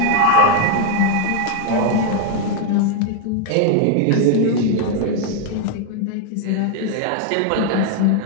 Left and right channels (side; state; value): both; different; correlation 0.00